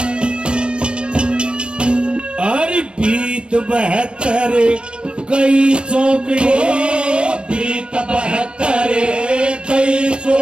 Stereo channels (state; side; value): late; left; 0.057 ms